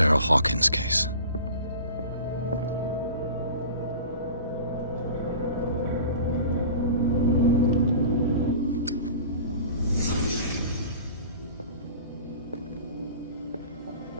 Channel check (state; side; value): inverted; both; correlation -0.40